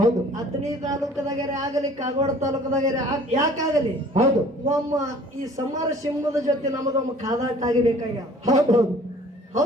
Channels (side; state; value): both; normal; correlation 0.51